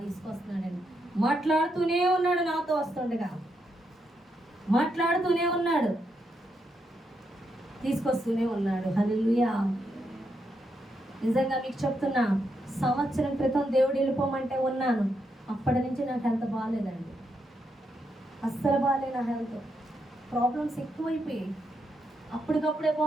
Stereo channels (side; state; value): both; normal; correlation 0.81